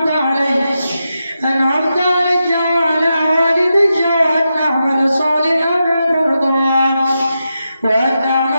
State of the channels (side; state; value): both; inverted; correlation -0.88